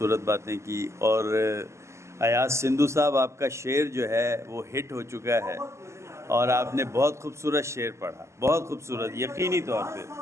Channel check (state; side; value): late; left; 0.13 ms